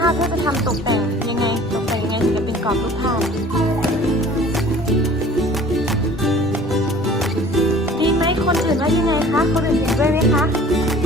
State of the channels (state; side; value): normal; both; correlation 0.48